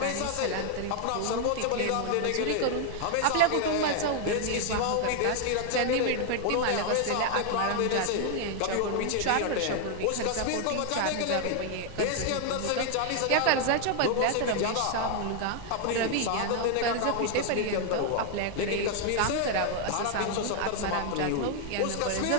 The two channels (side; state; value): both; different; correlation 0.00